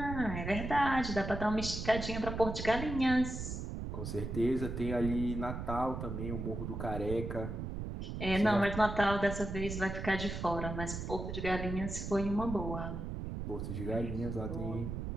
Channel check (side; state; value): right; noise; rumble, 5 dB below the sound